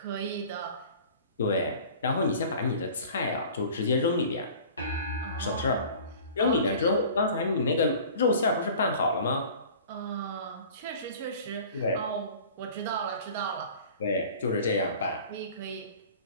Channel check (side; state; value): both; inverted; correlation -0.44